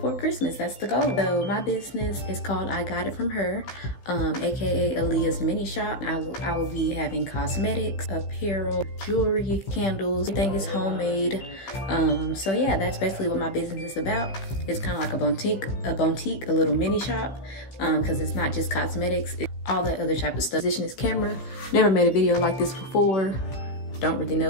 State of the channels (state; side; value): late; right; 15 ms